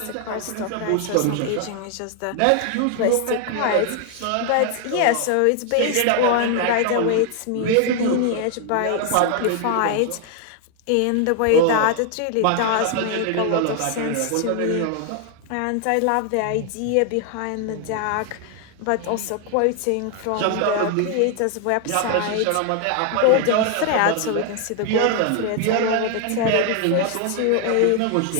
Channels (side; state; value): both; different; correlation 0.00